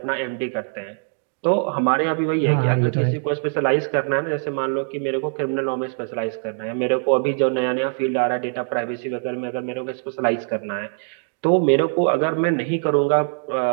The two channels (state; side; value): silent; left; 64 dB below the other